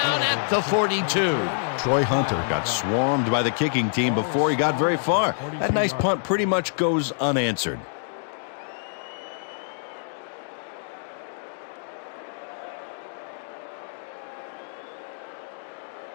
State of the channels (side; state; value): right; silent; digital silence